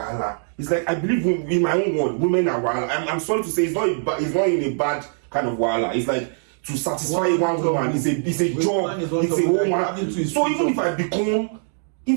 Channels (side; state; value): left; silent; digital silence